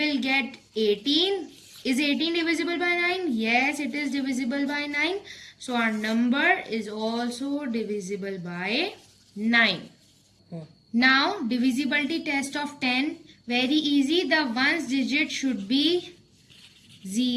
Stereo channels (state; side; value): identical; both; correlation 1.00